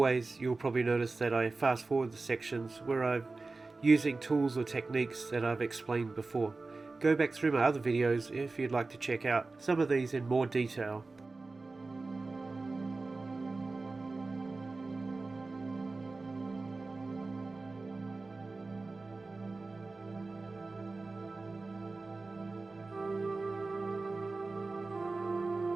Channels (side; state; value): left; quieter; 3.6 dB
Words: you'll probably notice that I fast forward the sections where I'm using tools or techniques that I've explained before. Go back through my other videos if you'd like to check out some of these in more detail.